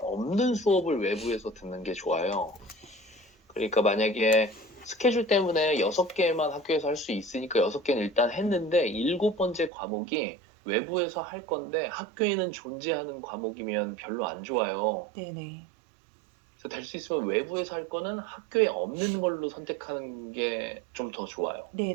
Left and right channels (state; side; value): drops out; left; at 9.7 s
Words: 수업을 외부에서 듣는 게 좋아요. 그러니까 만약에 스케줄 때문에 6개만 학교에서 할 수 있으니까 6개는 일단 했는데 7번째 과목이 외부에서 할 건데 학교에는 존재하는 과목이면 별로 안 좋아요. 네네. 그래서 될 수 있으면 외부에서 할 거는 학교에 없는 걸로 선택하는 게 좀 더 좋아요. 네네.